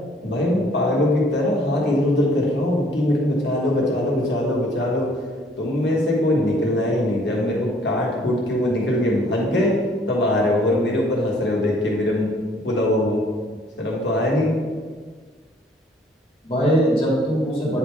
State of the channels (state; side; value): normal; both; correlation 0.60